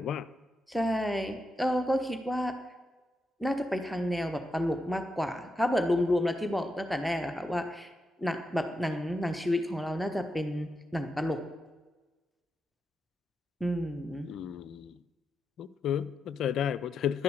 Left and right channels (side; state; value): both; normal; correlation 0.85